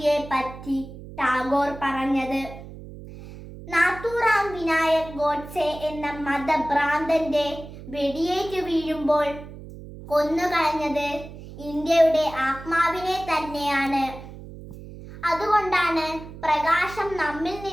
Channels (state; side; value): noise; right; hum, 14 dB below the sound